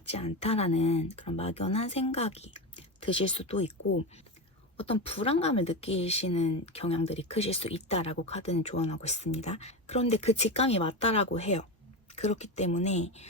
않다라는 그런 막연한 생각이 드실 수도 있고 어떤 불안감을 느끼시는 경향들이 크실 수 있다라고 카드는 조언하고 있습니다. 그런데 그 직감이 맞다라고 해요. 그렇기 때문에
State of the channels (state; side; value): normal; both; correlation 0.19